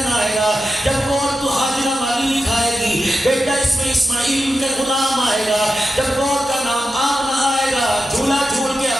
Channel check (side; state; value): both; normal; correlation 0.90